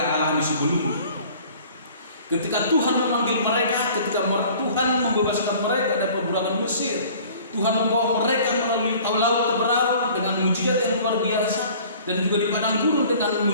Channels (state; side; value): inverted; both; correlation -0.49